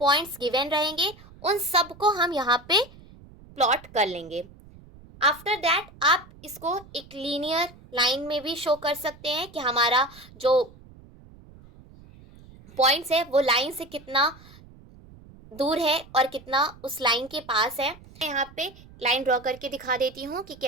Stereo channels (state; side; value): noise; right; rumble, 22 dB below the sound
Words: पॉइंट्स गिवन रहेंगे उन सब को हम यहाँ पे प्लॉट कर लेंगे। आफ्टर दैट आप इसको एक लीनियर लाइन में भी शो कर सकते हैं कि हमारा जो पॉइंट्स है वो लाइन से कितना दूर है और कितना उस लाइन के पास है। मैं यहाँ पे लाइन ड्रॉ करके दिखा देती हूँ कि